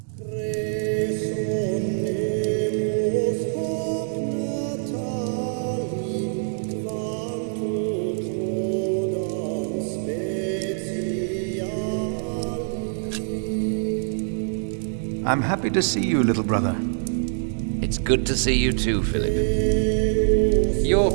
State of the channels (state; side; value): silent; left; digital silence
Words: I'm happy to see you, little brother. It's good to see you too, Philip.